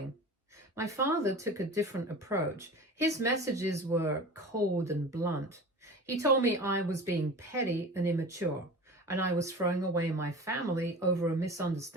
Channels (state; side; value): normal; both; correlation 0.35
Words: My father took a different approach. His messages were cold and blunt. He told me I was being petty and immature, and I was throwing away my family over a